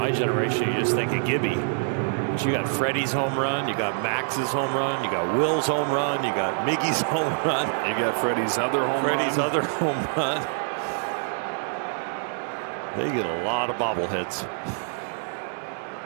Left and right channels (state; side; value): silent; left; digital silence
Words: generation, you just think of Gibby. But you got Freddie's home run, you got Max's home run, you got Will's home run, you got Miggy's home run. You got Freddie's other home run. They get a lot of bobbleheads.